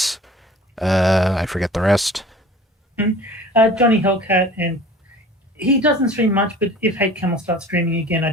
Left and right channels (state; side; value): normal; both; correlation 0.44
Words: I forget the rest. Johnny Hellcat, and he doesn't stream much, but if Hate Camel starts streaming again,